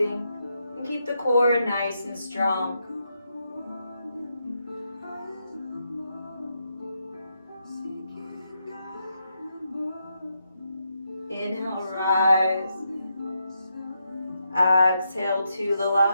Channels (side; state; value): both; inverted; correlation -0.82